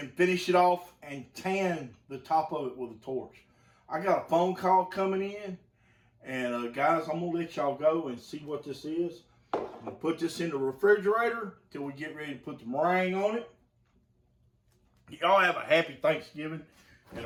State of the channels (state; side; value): identical; both; correlation 1.00